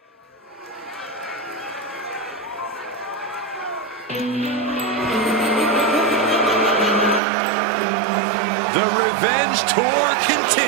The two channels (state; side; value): drops out; left; at 7.2 s